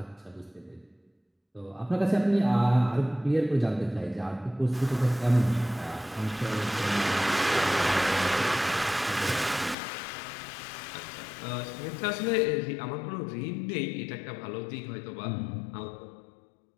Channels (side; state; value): right; drops out; at 9.8 s